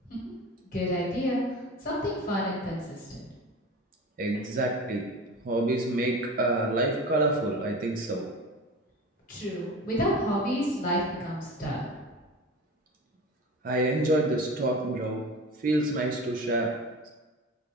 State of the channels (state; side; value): normal; both; correlation 0.33